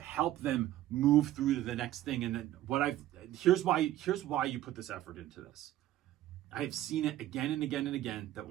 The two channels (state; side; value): quieter; left; 13.9 dB